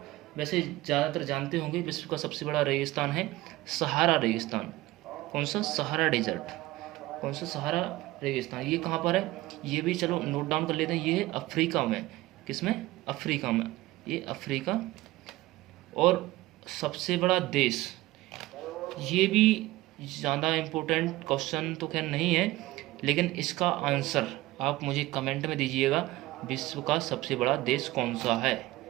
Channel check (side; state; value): left; quieter; 18.2 dB